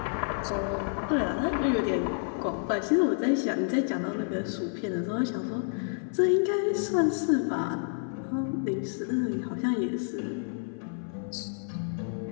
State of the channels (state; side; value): silent; right; 57 dB below the other